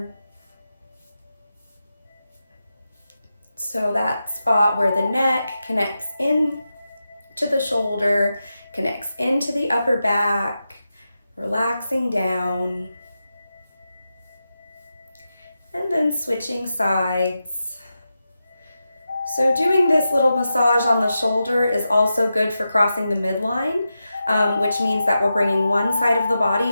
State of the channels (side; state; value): both; inverted; correlation -0.90